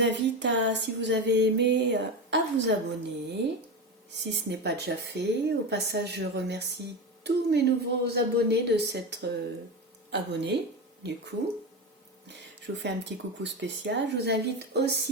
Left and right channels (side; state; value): both; normal; correlation 0.20